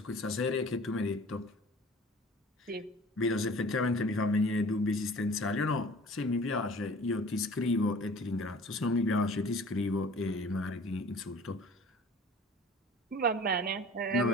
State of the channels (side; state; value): both; normal; correlation 0.46